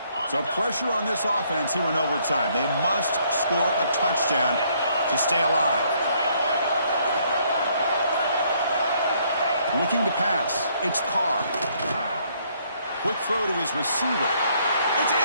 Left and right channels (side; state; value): both; inverted; correlation -0.67